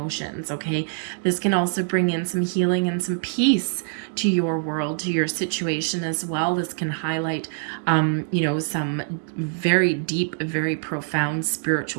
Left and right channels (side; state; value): left; silent; digital silence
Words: Okay. This can also bring in some healing and some peace to your world, to your situation as well. This can highlight, some very deep, very profound